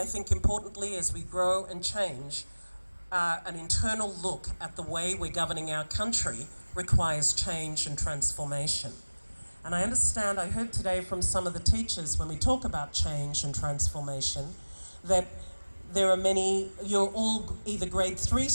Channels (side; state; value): both; inverted; correlation -1.00